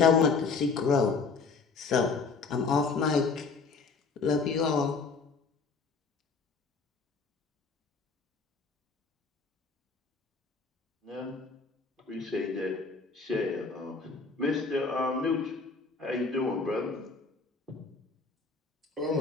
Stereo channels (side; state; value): right; quieter; 4.6 dB